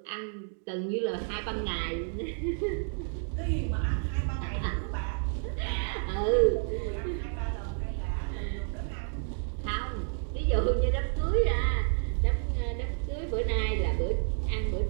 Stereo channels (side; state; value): left; silent; 58 dB below the other